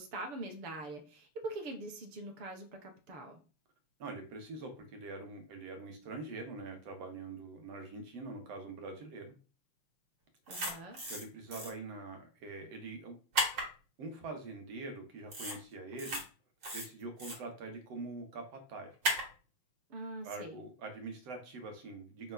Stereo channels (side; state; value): left; late; 7.5 ms